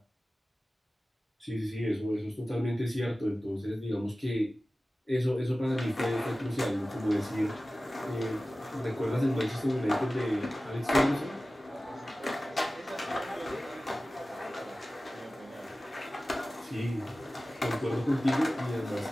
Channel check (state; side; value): normal; both; correlation 0.96